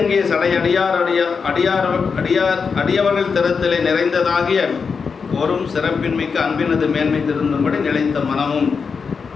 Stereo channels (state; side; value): quieter; right; 5.5 dB